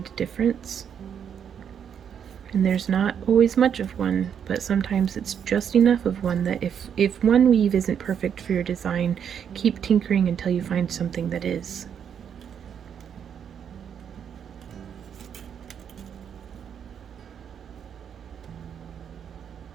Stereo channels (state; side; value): quieter; left; 8.1 dB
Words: difference. And there's not always much of one, but sometimes it's just enough of one that if one weave isn't perfect for your design, keep tinkering until you find something that is.